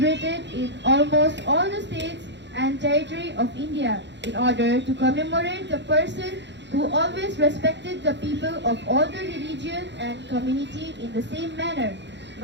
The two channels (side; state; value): left; late; 0.52 ms